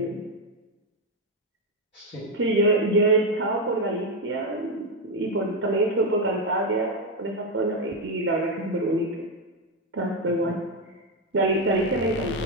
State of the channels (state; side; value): normal; both; correlation 0.06